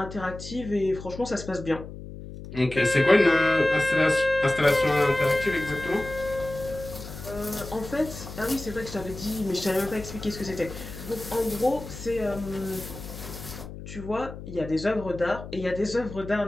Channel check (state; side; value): noise; left; hum, 12 dB below the sound